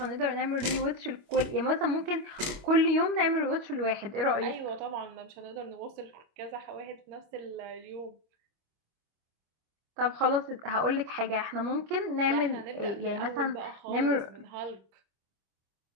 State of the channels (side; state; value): left; late; 25 ms